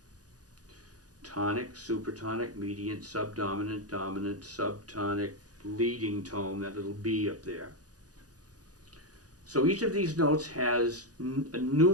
Tonic, supertonic, mediant, subdominant, dominant, subtonic, leading tone, that little B up there. So each of these notes has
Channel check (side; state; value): left; late; 0.68 ms